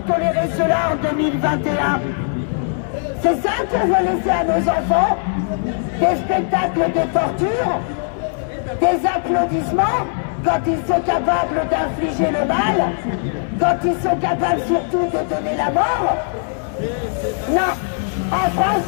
tolérer cela en 2021? C'est ça qu'on va laisser à nos enfants? Des spectacles de torture? Des applaudissements quand ils sont capables d'infliger le mal? Quand ils sont capables surtout de donner la mort? Non, en France,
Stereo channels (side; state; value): right; silent; digital silence